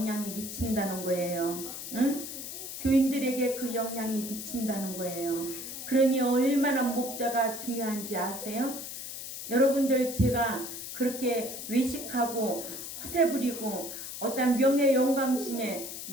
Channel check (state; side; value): noise; left; hiss, 8 dB below the sound